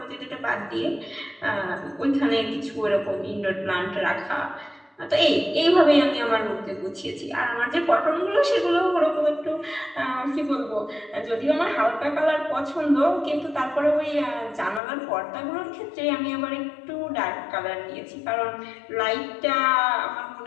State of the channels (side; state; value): right; drops out; at 14.8 s